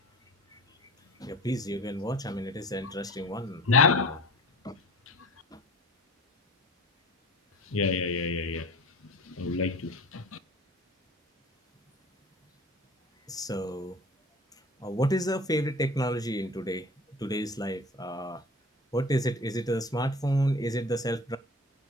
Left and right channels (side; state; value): both; normal; correlation 0.40